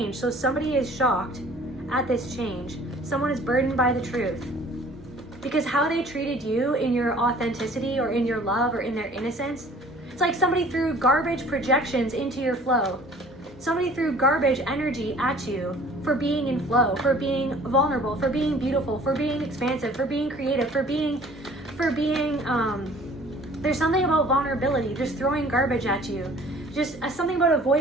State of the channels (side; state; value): both; normal; correlation 0.51